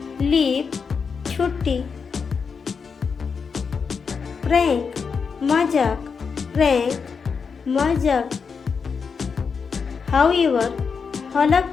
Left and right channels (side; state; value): right; quieter; 5.7 dB